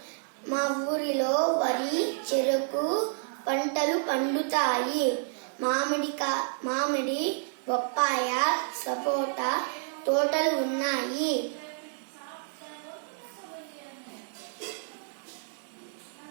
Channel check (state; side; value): silent; left; digital silence